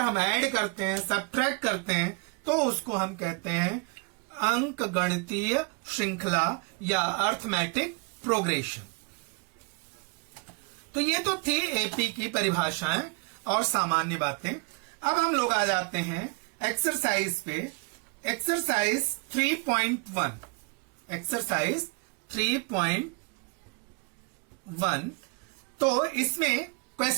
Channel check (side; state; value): left; quieter; 32.6 dB